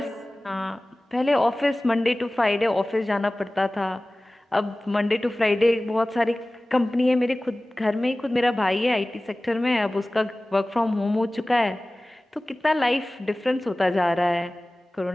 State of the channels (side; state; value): both; normal; correlation 0.98